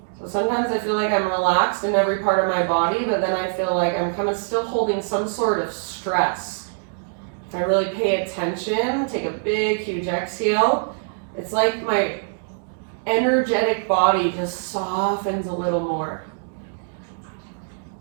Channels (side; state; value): left; silent; digital silence